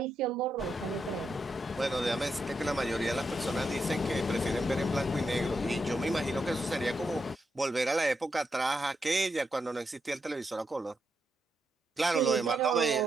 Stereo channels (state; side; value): normal; both; correlation 0.83